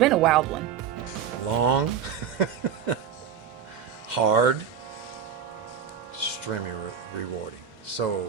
a wild one. Long, hard, extremely rewarding. So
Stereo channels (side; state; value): left; quieter; 7.9 dB